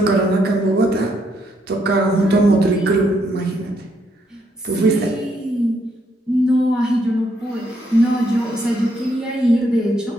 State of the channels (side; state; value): both; normal; correlation 0.74